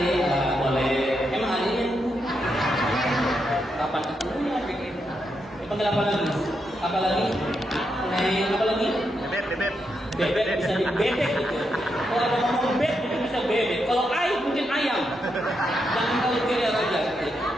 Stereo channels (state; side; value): normal; both; correlation 0.82